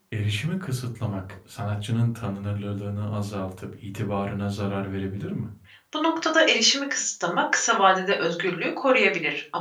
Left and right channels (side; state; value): both; identical; correlation 1.00